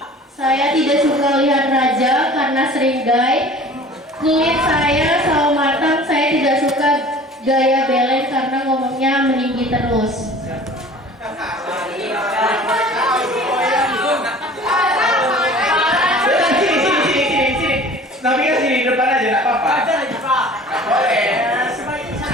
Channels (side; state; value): both; normal; correlation 0.45